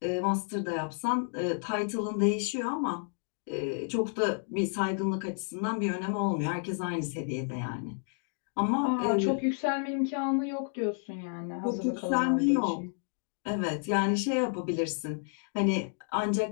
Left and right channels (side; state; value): right; silent; 57 dB below the other